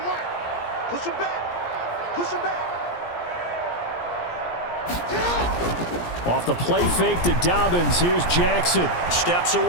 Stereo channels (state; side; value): late; right; 17 ms